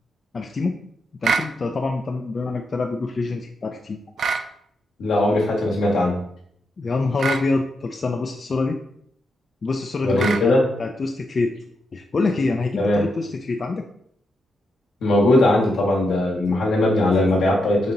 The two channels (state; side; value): normal; both; correlation 0.83